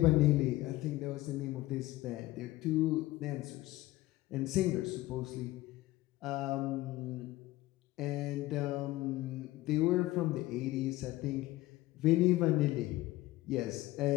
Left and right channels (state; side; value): quieter; right; 17.7 dB